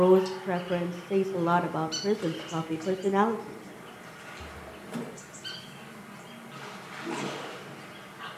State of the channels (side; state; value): both; identical; correlation 1.00